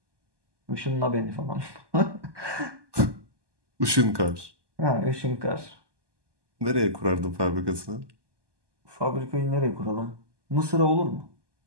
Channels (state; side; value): late; left; 1.2 ms